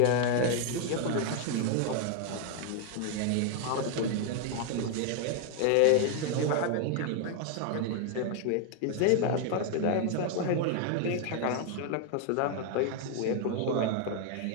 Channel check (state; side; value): different; both; correlation 0.01